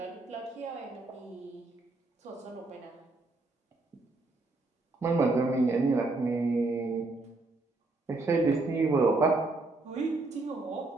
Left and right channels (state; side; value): quieter; left; 3.3 dB